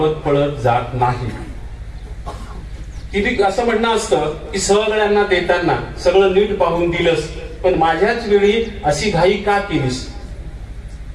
पळत जात नाही. किती असं म्हणणं असतं की सगळ्यांना देताना सगळं नीट पाहून दिलंस, पण माझ्याच वेळी अशी घाई का केलीस?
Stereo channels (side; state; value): both; identical; correlation 1.00